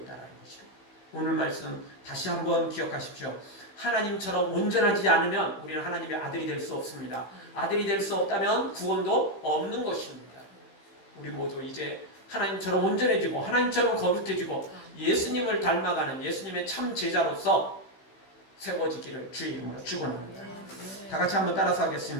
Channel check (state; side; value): late; right; 16 ms